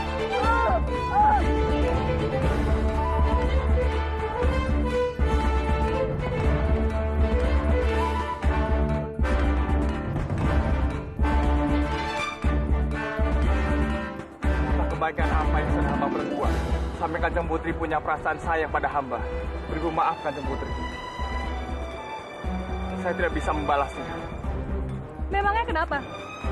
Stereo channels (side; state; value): both; identical; correlation 1.00